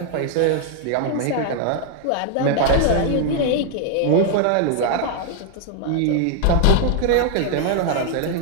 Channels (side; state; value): both; different; correlation 0.00